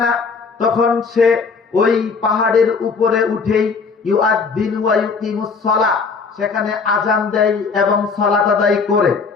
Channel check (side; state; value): right; quieter; 5.0 dB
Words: না। তখন সে ওই পাহাড়ের উপরে উঠেই ইউআদ্দিন ওয়া ইউকিমুস সালাহ, সেখানে আজান দেয় এবং সালাত আদায় করে।